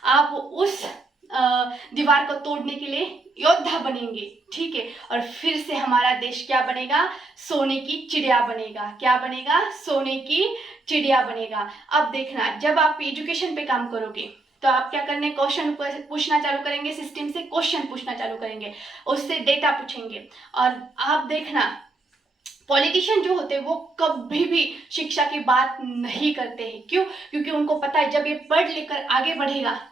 आप उस दीवार को तोड़ने के लिए योद्धा बनेंगे, ठीक है। और फिर से हमारा देश क्या बनेगा, सोने की चिड़िया बनेगा। क्या बनेगा, सोने की चिड़िया बनेगा। अब देखना, जब आप एजुकेशन पे काम करोगे तो आप क्या करने, क्वेश्चन पूछना चालू करेंगे, सिस्टम से क्वेश्चन पूछना चालू करेंगे, उससे डेटा पूछेंगे। और आप देखना, पॉलिटिशियन जो होते हैं वो कभी भी शिक्षा की बात नहीं करते हैं। क्यों, क्योंकि उनको पता है जब ये पढ़ लिख कर आगे बढ़ेगा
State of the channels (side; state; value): left; quieter; 3.1 dB